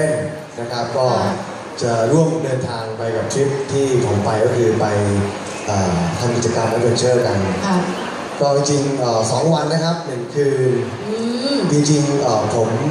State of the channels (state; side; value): identical; both; correlation 1.00